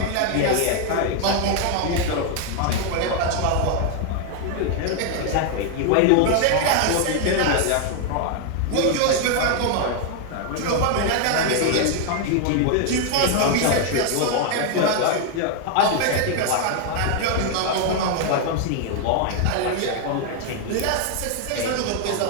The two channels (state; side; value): different; both; correlation 0.00